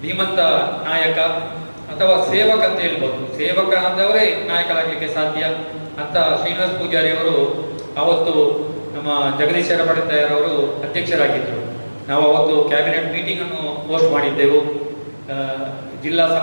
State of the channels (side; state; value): both; inverted; correlation -1.00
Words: ಧೀಮಂತ ನಾಯಕ ಅಥವಾ ಸೇವಕ ಅಂತ ಹೇಳ್ಬೋದು. ಸೇವಕ ಆದವರೇ ನಾಯಕರಾಗಲಿಕ್ಕೆ ಸಾಧ್ಯ ಅಂತ ಶ್ರೀನಿವಾಸ ಪೂಜಾರಿ ಅವರು ಅವತ್ತು ನಮ್ಮ ಜಗದೀಶ್ವರ ಪಡಿತಾಯರವರು ಅಧ್ಯಕ್ಷರಾಗಿದ್ದರು. ನಾವು ಅವತ್ತು ಕ್ಯಾಬಿನೆಟ್ ಮೀಟಿಂಗ್ ಅನ್ನು ಹೋಸ್ಟ್ ಮಾಡಿದ್ದೆವು, ಜಿಲ್ಲಾ